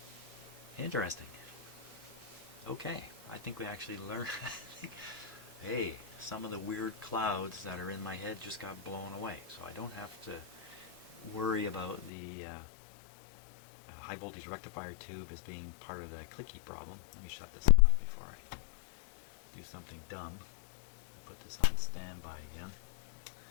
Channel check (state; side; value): drops out; right; at 12.1 s